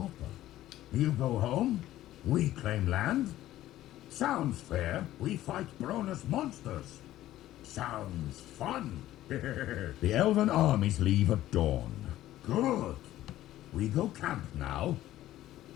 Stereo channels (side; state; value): right; quieter; 14.2 dB